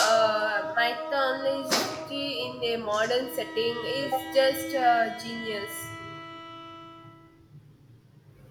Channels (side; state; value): both; identical; correlation 1.00